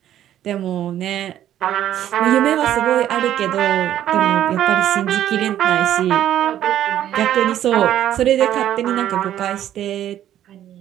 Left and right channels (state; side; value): quieter; left; 11.6 dB